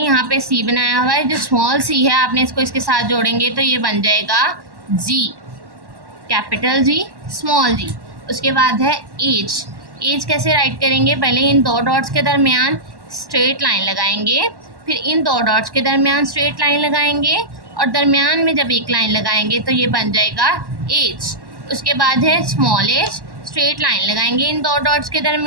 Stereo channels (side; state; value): left; late; 1.1 ms